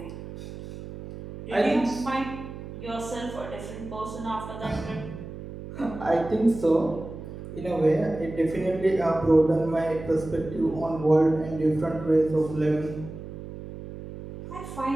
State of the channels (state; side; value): noise; right; hum, 11 dB below the sound